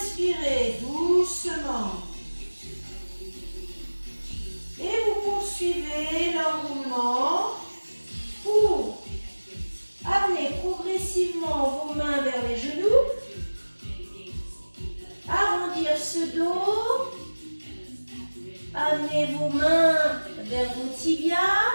doucement. Et vous poursuivez l'enroulement pour amener progressivement vos mains vers les genoux. Arrondir ce dos. Amenez vos mains vers vos tibias.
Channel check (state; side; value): inverted; both; correlation -1.00